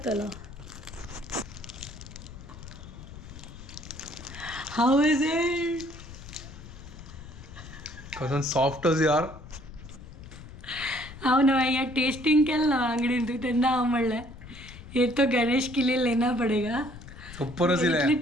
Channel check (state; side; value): noise; left; rumble, 15 dB below the sound